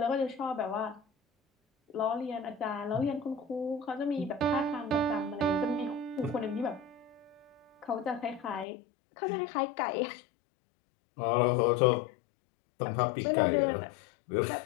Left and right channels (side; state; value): right; drops out; at 8.7 s